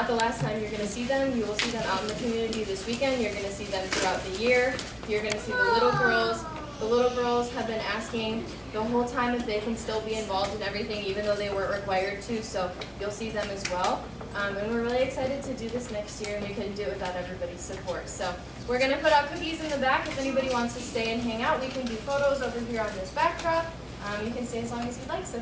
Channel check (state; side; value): identical; both; correlation 1.00